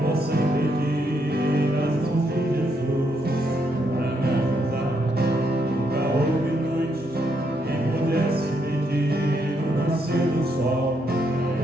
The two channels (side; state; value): both; normal; correlation 0.76